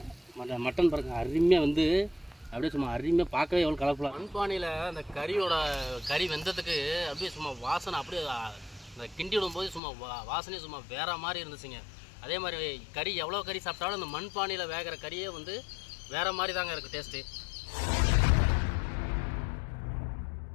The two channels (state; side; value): drops out; right; at 9.8 s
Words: மட்டன் பாருங்கள் அருமையாக வந்து அப்படியே சும்மா அருமையாக பார்க்கவே எவ்வளோ கலர்ஃபுல்லாக. மண்பானையில் அந்த கறி வெந்ததுக்கு அப்படியே சும்மா வாசனை அப்படியே அந்த கிண்டி விடும்போது சும்மா வாசனையே சும்மா வேறு மாதிரி இருந்துச்சுங்க. அதே மாதிரி கறி எவ்வளோ கறி சாப்பிட்டாலும் அந்த மண்பானையில் வேகிற கறியே வந்து வேறு மாதிரி தாங்க இருக்குது டேஸ்ட்டு.